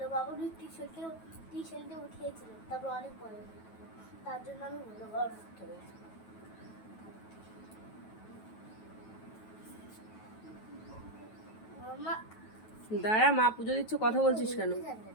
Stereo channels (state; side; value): late; right; 9.2 ms